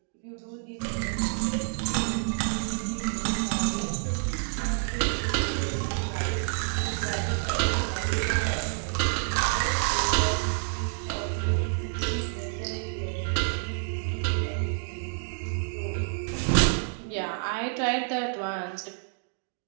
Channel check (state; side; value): silent; left; digital silence